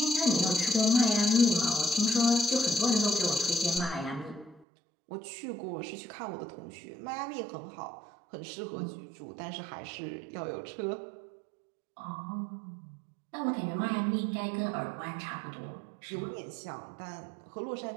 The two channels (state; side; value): drops out; left; at 4.7 s